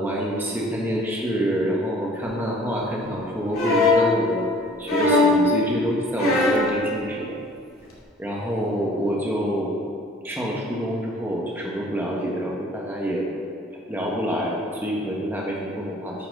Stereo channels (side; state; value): both; normal; correlation 0.52